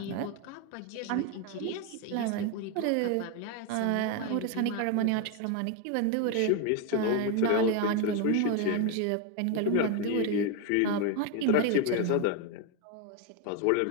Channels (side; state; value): both; different; correlation 0.01